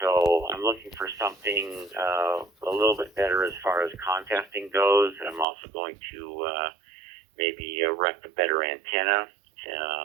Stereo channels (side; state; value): left; drops out; at 5.5 s